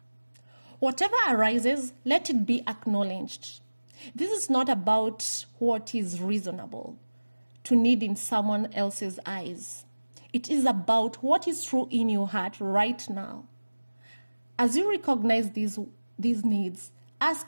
Whatever arises, let it be acknowledged. This is not about what is reasonable to need in someone else's eyes. It is about what is true in your heart right now. As you recognize these needs,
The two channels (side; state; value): both; inverted; correlation -1.00